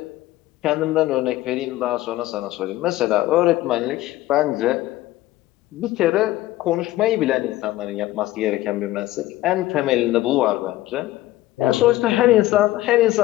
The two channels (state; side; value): quieter; right; 16.3 dB